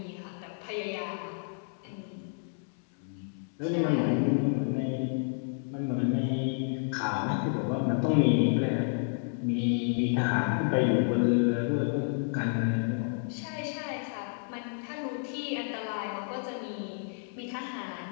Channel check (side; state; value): right; silent; 57 dB below the other